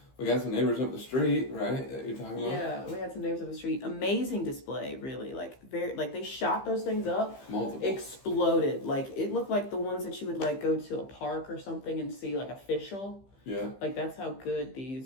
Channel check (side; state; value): right; late; 15 ms